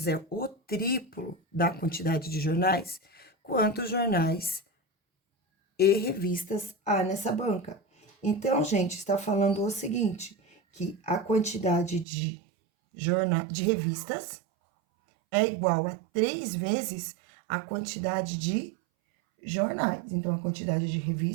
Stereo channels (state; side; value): drops out; left; at 12.1 s